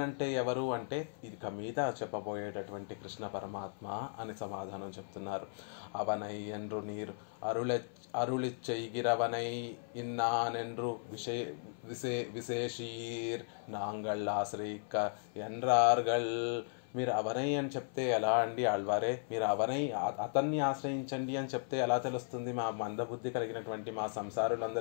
అంటే ఎవరు అంటే ఇక మీద చెప్పబోయేటటువంటి కృష్ణ పరమాత్మ అని సమాధానం చెప్తున్నారు. అవనై ఎండ్రు నీర్ అరుళిచ్చైగిరవనై ఇన్నానెండ్రు విశేషీర్ నాంగళ్ ఆశ్రయిక్క ఎన్రార్గళ్. మీరు అవనై అని చెప్తే ఎలా అండి ఆళ్వారే, మీరు అవనై అతన్ని ఆశ్రయించండి అని చెప్తే ఎలా తెలుస్తుంది? మా మందబుద్ధి కలిగినటువంటి మా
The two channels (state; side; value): silent; right; 54 dB below the other